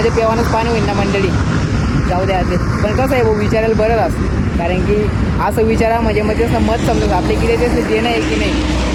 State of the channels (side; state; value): both; identical; correlation 1.00